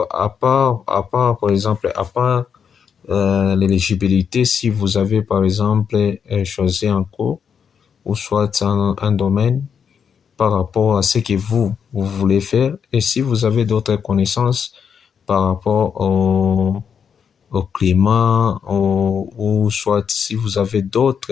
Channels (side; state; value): right; quieter; 7.1 dB